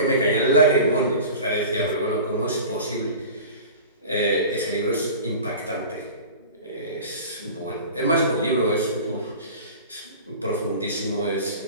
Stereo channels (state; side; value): inverted; both; correlation -0.37